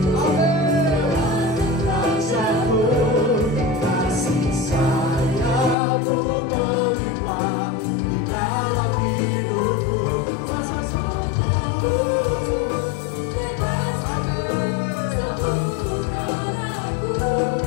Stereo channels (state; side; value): drops out; right; at 5.8 s